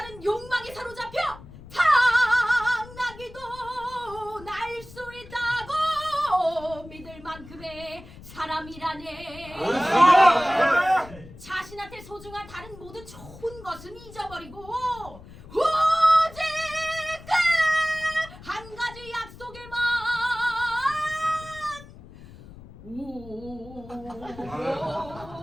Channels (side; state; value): left; noise; rumble, 18 dB below the sound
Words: 욕망에 사로잡혀 당나귀도 날 수 있다고 믿을 만큼의 사람이라네. 자신한테 소중한 다른 모든 좋은 것은 잊어버리고 오직 그 한 가지 약속에만